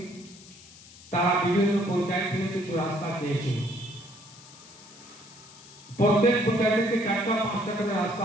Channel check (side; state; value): left; noise; hiss, 20 dB below the sound